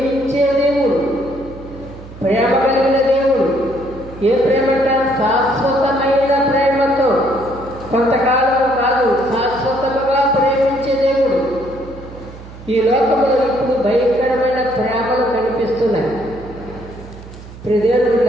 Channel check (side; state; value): right; noise; hum, 16 dB below the sound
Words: దేవుడు, ప్రేమ కలిగిన దేవుడు. ఏ ప్రేమంట? శాశ్వతమైన ప్రేమతో, కొంతకాలం కాదు, శాశ్వతముగా ప్రేమించే దేవుడు. ఈ లోకంలో ఇప్పుడు భయంకరమైన ప్రేమలు కనిపిస్తున్నాయి.